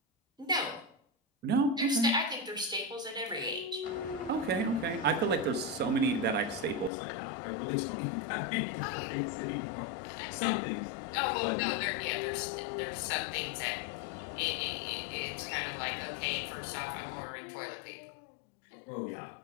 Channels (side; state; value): right; drops out; at 6.9 s